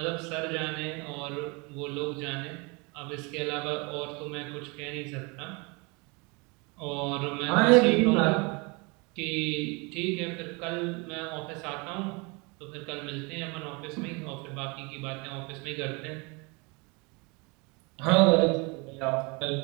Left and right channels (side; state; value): left; quieter; 29.3 dB